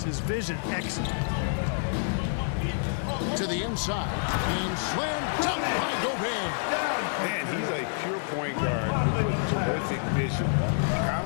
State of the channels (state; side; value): silent; right; 59 dB below the other